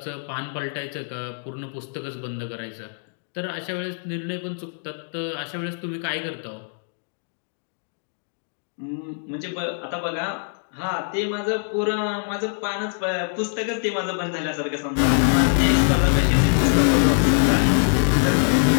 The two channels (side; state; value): right; silent; digital silence